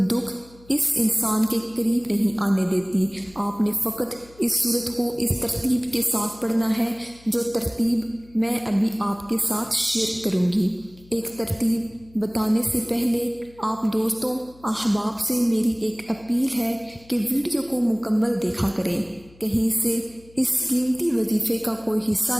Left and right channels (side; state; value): left; noise; hum, 25 dB below the sound